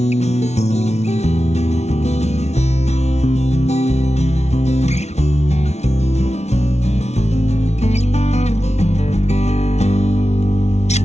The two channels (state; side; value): late; right; 0.32 ms